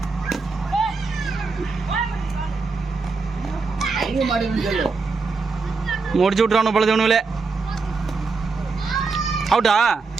முடிச்சு விட்டுறானு பொழுது ஒண்ணுல அவுட்டா.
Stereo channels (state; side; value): quieter; left; 4.3 dB